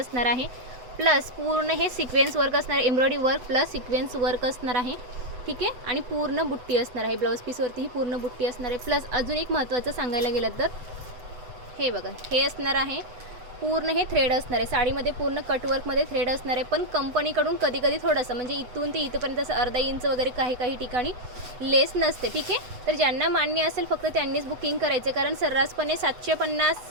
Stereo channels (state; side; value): late; left; 8.0 ms